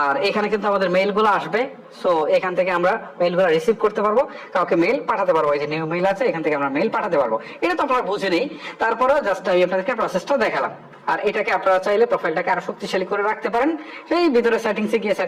আর এখানে কিন্তু আমাদের মেইলগুলো আসবে। সো এখান থেকে আমরা মেইলগুলো রিসিভ করতে পারবো, কাউকে মেইল পাঠাতে পারবো। এই যে নিউ মেইল আছে, এখান থেকে আমরা মেইল পাঠাতে পারবো। এটা তো আপনারা বুঝে নেই, তারপরেও জাস্ট আমি আপনাদেরকে প্রসেসটা দেখালাম। আর এটাকে আপনারা চাইলে প্রোফাইলটাকে আরো শক্তিশালী করে রাখতে পারেন। সেই ভিতরে সেটিংসে গিয়ে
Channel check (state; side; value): identical; both; correlation 1.00